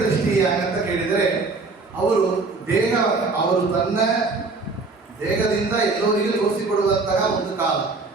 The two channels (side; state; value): left; quieter; 3.8 dB